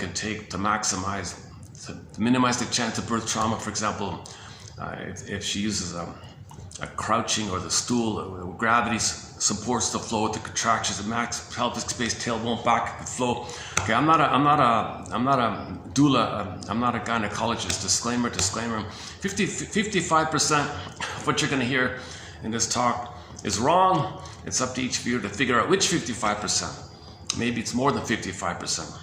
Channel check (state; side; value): identical; both; correlation 1.00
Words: take to maximize, to minimize the chance of birth trauma. For example, if she uses a crouching or the stool, gravity supports the flow with the contractions, the max pelvic space, tailbone back flow. Okay, I'm not a doula, I'm not a gynecologist. Disclaimer. 55% of what you're going to hear in this talk is wrong. It's up to each viewer to figure out which 55%. maybe it's more than 55%.